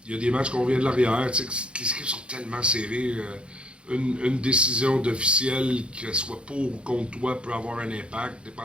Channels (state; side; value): late; left; 0.057 ms